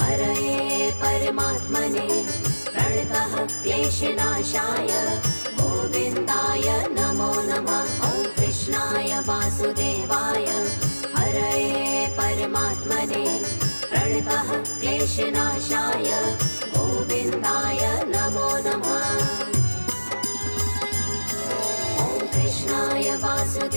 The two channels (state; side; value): inverted; both; correlation -1.00